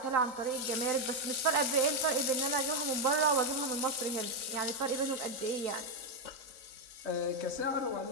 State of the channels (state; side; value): late; left; 3.9 ms